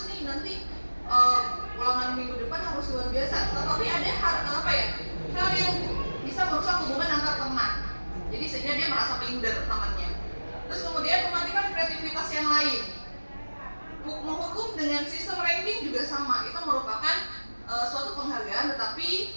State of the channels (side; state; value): both; inverted; correlation -1.00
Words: nih, nanti ulangan minggu depan harus luar biasa. Tetapi ada hal yang bisa merusak hubungan antar teman. Jadi sehingga dia merasa minder temannya. Terus kemudian mematikan kreativitas yang lain. Menghukum dengan sistem ranking juga sama, itu merupakan suatu penghargaan tetapi